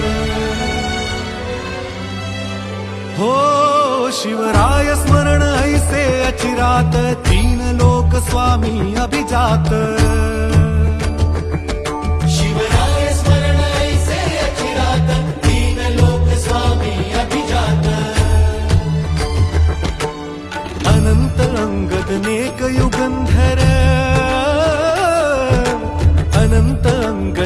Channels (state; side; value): identical; both; correlation 1.00